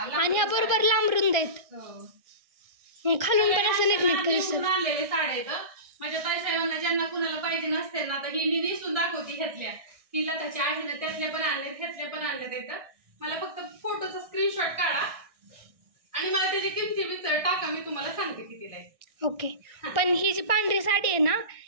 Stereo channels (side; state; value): left; late; 1.6 ms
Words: लांब आणि ह्या बरोबर लांब रुंद आहेत हो. खालून पण असं नीटनीट मी दिसत दुमडून आणलेले साड्या आहेत माझ्या ताई साहेबांना ज्यांना कुणाला पाहिजे नसते ना आता ही मी नेसून दाखवते घेतल्या ही लताची आहे ना, त्यातले पण आणले, ह्यातले पण आणले तिथं. मला फक्त फोटोचा स्क्रीनशॉट काढा आणि मला त्याची किमती विचार टाका, मी तुम्हाला सांगते कितीला आहे. ओके. पण ही जी पांढरी साडी आहे ना,